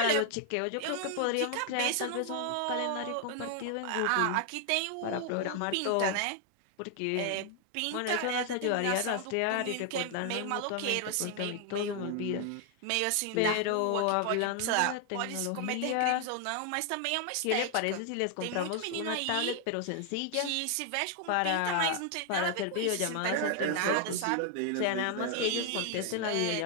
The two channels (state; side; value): different; both; correlation 0.00